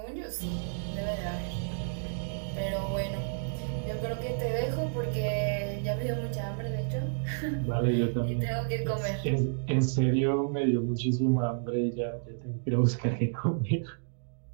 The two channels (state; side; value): silent; left; digital silence